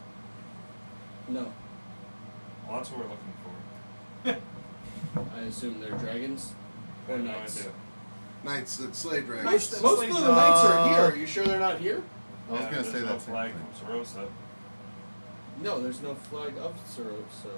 No. Well, that's what we're looking for. I assume they're dragons I or have no knights. idea. Knights that slay dragons. Most slay of the knights are here. Uh, Are you sure they're not here? I was Yeah, gonna say there's no that same flag thing. from Sarosa. No, there's no flag of Sarosa.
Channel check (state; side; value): inverted; both; correlation -1.00